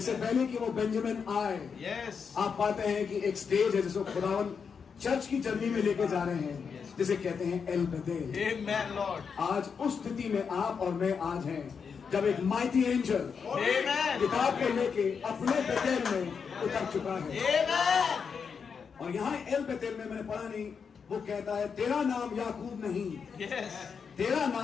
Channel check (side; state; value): right; quieter; 6.1 dB